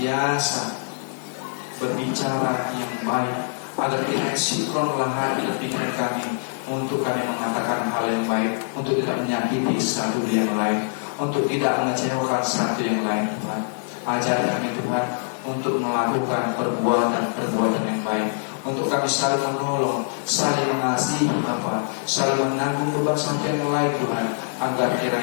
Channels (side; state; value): right; silent; 63 dB below the other